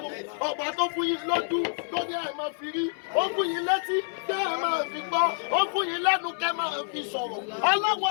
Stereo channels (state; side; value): silent; right; 60 dB below the other